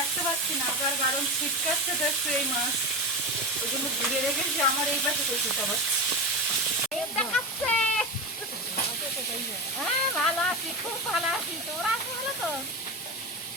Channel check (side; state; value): both; normal; correlation 0.21